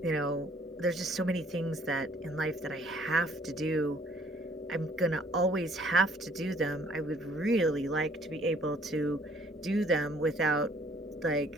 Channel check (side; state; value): both; normal; correlation 0.60